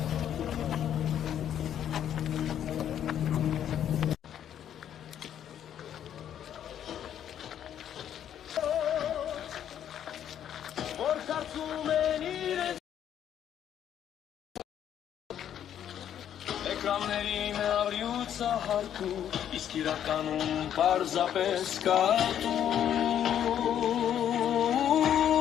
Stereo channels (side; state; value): right; quieter; 10.0 dB